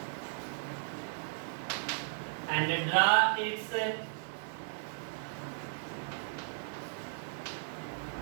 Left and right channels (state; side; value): silent; left; digital silence